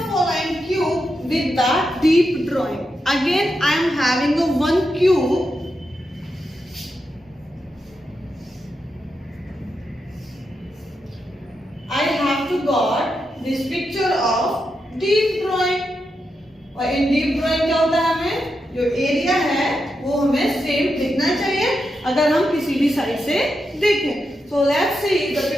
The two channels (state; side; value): normal; both; correlation 0.86